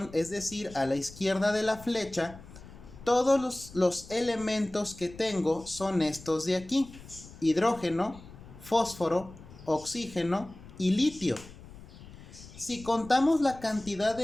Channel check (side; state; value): left; noise; rumble, 18 dB below the sound